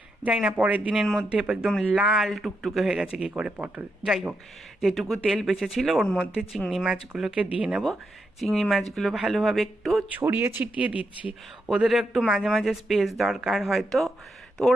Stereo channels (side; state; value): both; normal; correlation 0.83